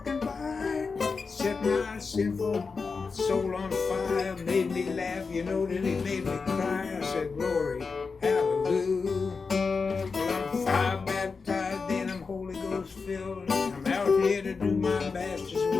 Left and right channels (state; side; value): quieter; right; 4.8 dB